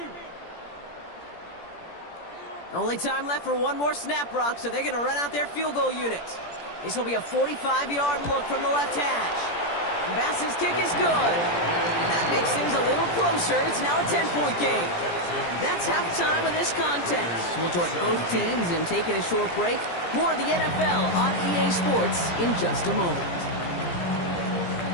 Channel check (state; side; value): late; right; 17 ms